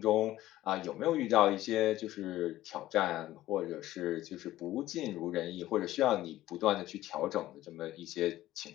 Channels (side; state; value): right; quieter; 15.0 dB